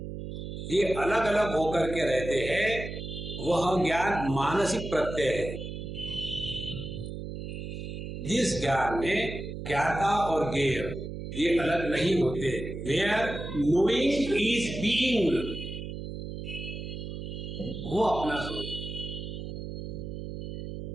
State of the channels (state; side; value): noise; right; hum, 7 dB below the sound